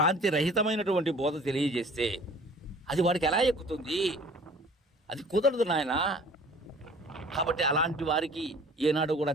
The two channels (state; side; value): normal; both; correlation 0.50